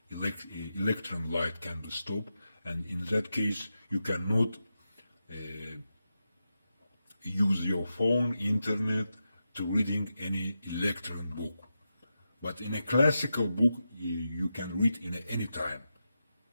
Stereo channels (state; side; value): inverted; both; correlation -0.89